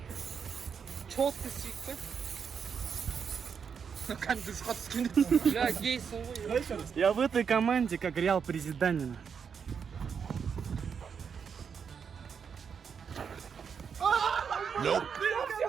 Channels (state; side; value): quieter; left; 6.7 dB